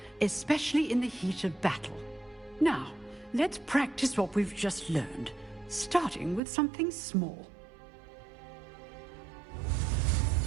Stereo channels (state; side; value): drops out; left; at 6.4 s